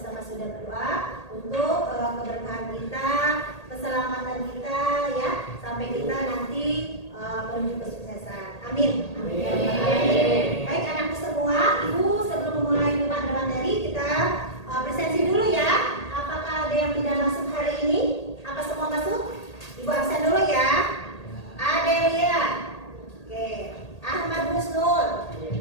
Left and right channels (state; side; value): late; right; 1.8 ms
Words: sudah berdoa untuk keberkahan kita, keselamatan kita ya, sampai kita nanti menuju kesuksesan. Amin. Amin. Baik anakku semua, Ibu sebelum memulai pada materi kita presensi dulu ya. Apakah ada yang tidak masuk hari ini? Apa semua masuk? Ibu absen dulu ya. Adelia. Oke. Ahmad Husnul.